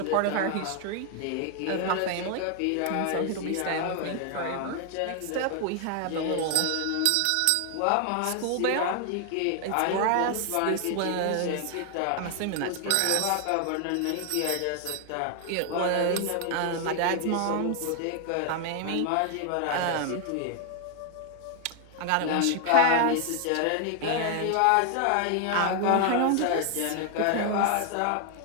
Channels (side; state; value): both; different; correlation 0.00